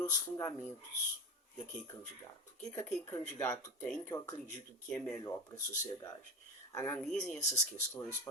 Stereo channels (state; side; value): normal; both; correlation 0.24